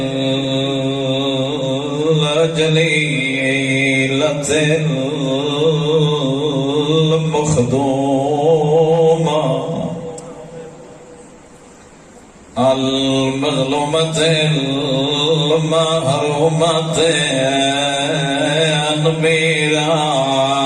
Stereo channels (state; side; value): identical; both; correlation 1.00